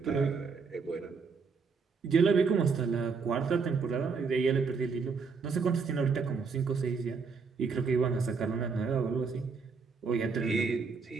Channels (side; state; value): left; quieter; 5.1 dB